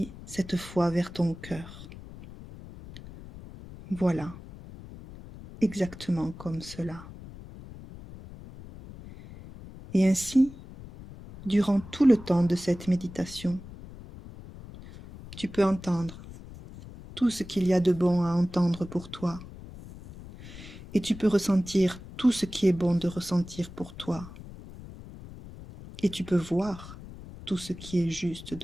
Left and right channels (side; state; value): left; noise; rumble, 15 dB below the sound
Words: cette fois vers ton cœur. Voilà, exactement comme cela. Et ainsi, durant tout le temps de cette méditation, tu peux entendre tout ce qu'il y a de bon à entendre pour toi. Et tu peux ressentir tout ce qui est bon de ressentir pour toi. Et tu peux voir tout ce qui est juste